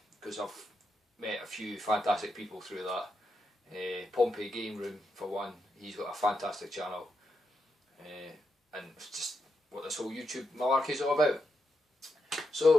because I've met a few fantastic people through that. Pompey Game Room for one, he's got a fantastic channel, and it's just what this whole YouTube malarkey is all about.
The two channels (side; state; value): both; normal; correlation 0.84